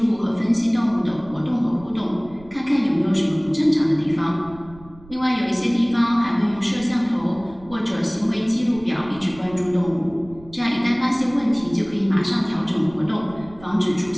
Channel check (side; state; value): right; noise; rumble, 21 dB below the sound